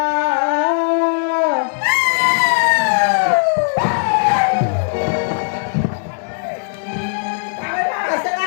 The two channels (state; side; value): silent; right; 68 dB below the other